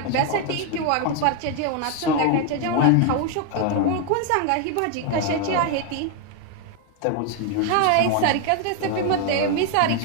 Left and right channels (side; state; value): both; different; correlation 0.01